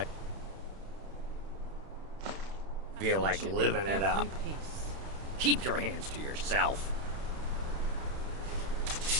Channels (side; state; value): left; late; 31 ms